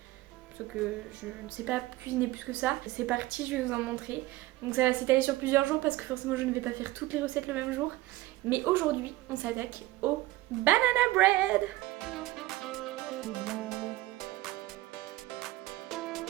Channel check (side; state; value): left; quieter; 17.6 dB